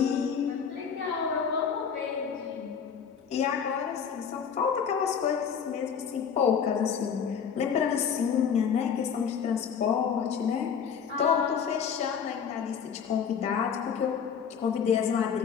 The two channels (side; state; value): right; quieter; 7.1 dB